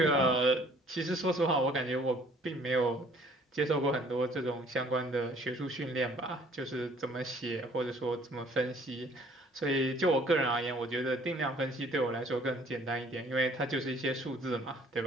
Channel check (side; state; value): both; normal; correlation 0.57